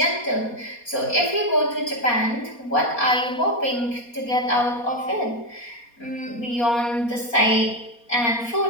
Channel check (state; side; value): late; right; 4.2 ms